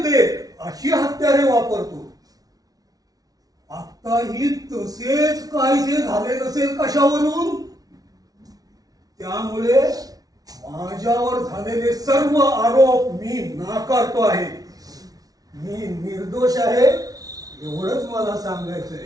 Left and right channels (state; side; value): late; left; 0.18 ms